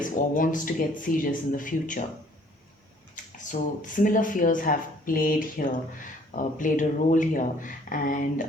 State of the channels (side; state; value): both; normal; correlation 0.58